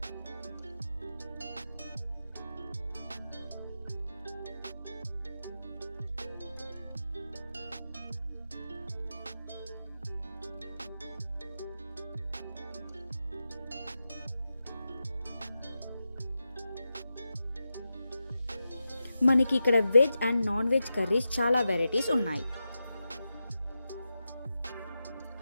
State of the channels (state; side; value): inverted; both; correlation -0.90